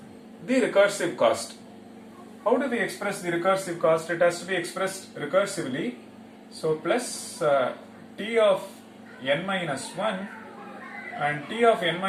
the recursive cost. How do we express the recursive cost? It has to be expressed recursively. So plus t of n minus 1, and t of n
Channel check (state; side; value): identical; both; correlation 1.00